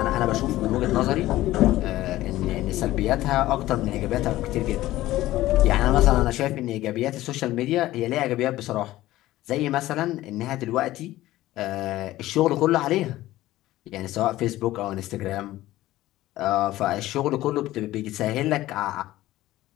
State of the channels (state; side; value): quieter; right; 15.9 dB